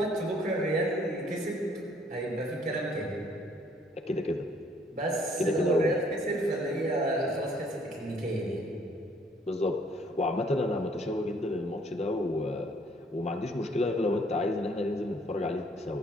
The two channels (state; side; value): normal; both; correlation 0.62